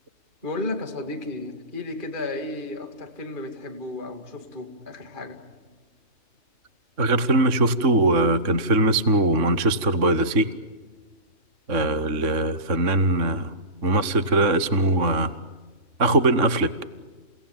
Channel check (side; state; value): left; late; 3.5 ms